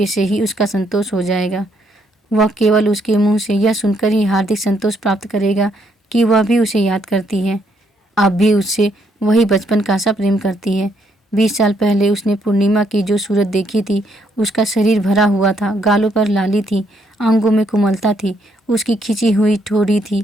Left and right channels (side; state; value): both; normal; correlation 0.72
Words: से ही उसका संतोष हो जाएगा। वह केवल उसके मुंह से यह सुनकर ही हार्दिक संतोष प्राप्त करेगा कि वह भी उसे याद करती है, अब भी उससे वही बचपन का सा प्रेम करती है। 20 साल पहले उसने पूर्णिमा की जो सूरत देखी थी, उसका शरीर भरा हुआ था, गालों पर लाली थी, अंगों में कोमलता थी, उसकी खिंची हुई ठोड़ी थी